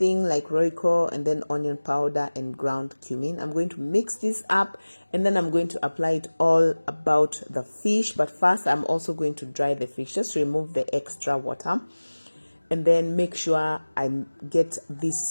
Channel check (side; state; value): both; inverted; correlation -1.00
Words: like Royco, and then onion powder and ground cumin. I'm going to mix this up, and then I'm going to apply it all about the fish. But first, I'm also going to dry the fish, just to remove the extra water. And then make sure I get